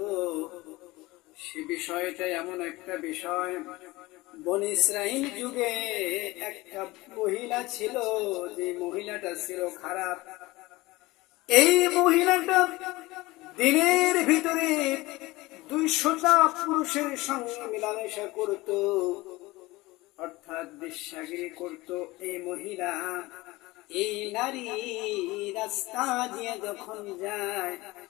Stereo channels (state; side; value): quieter; right; 20.6 dB